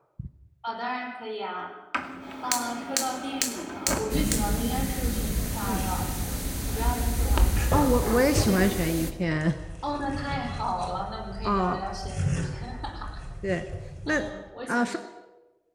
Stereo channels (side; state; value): both; identical; correlation 1.00